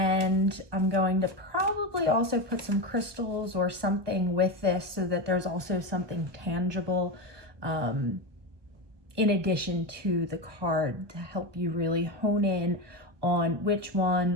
I'm going to probably also put some crystals or something with this so that there's also something tangible in addition to the card to help you really hone in on which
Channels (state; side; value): late; left; 1.2 ms